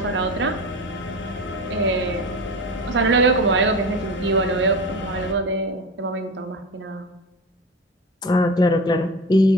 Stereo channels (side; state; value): both; normal; correlation 0.28